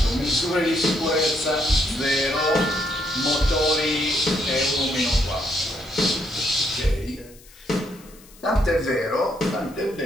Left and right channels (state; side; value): noise; left; hiss, 24 dB below the sound